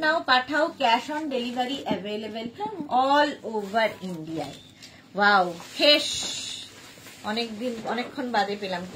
নাও পাঠাও, cash on delivery available all over ইন্ডিয়ায়। ওয়াও, খেস, অনেকদিন অনেকক্ষণ বাদে পেলাম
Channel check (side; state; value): both; identical; correlation 1.00